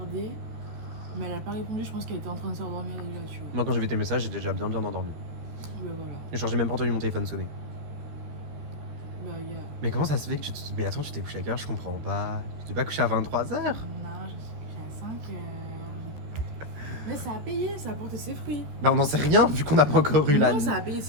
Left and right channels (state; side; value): late; left; 13 ms